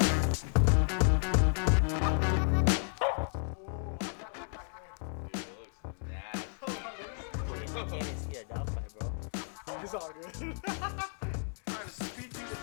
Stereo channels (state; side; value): silent; right; 56 dB below the other